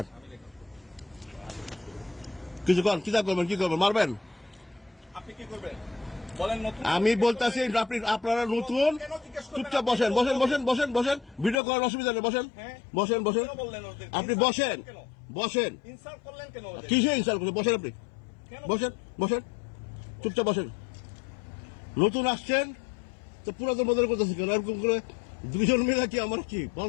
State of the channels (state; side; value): drops out; right; at 11.6 s